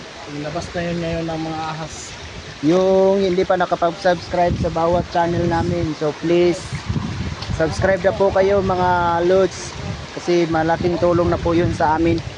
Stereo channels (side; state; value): both; identical; correlation 1.00